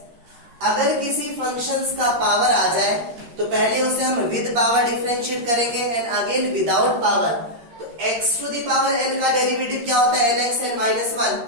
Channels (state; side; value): late; left; 13 ms